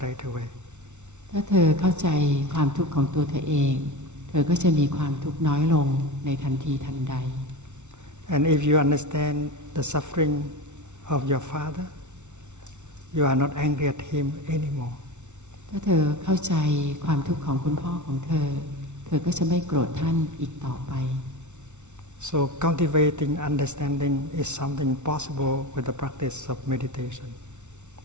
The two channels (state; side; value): late; left; 0.83 ms